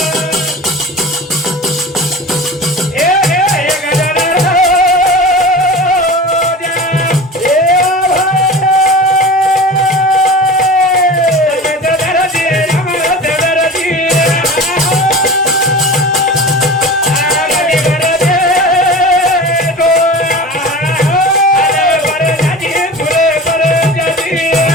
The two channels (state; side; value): normal; both; correlation 0.34